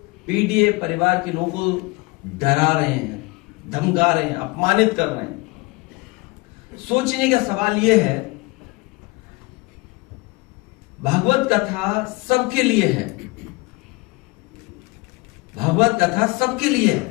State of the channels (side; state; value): right; quieter; 24.9 dB